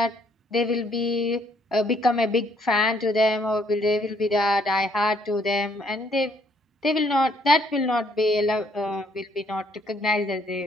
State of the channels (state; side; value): normal; both; correlation 0.67